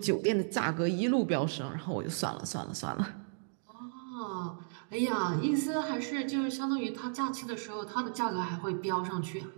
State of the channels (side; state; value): left; silent; digital silence